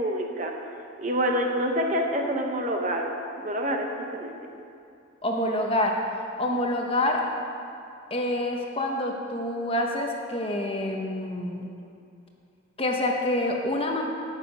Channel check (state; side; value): normal; both; correlation 0.07